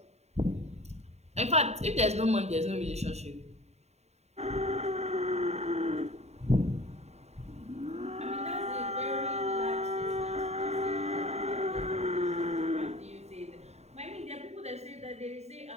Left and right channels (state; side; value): late; left; 0.32 ms